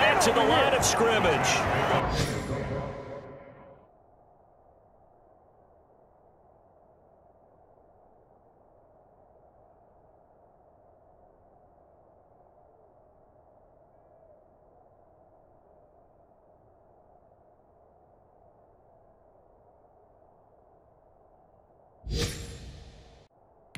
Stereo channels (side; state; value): both; identical; correlation 1.00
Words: to the line of scrimmage.